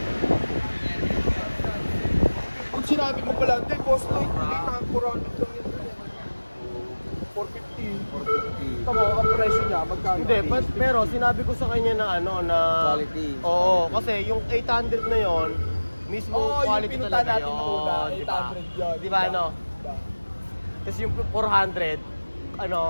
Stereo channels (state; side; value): inverted; both; correlation -1.00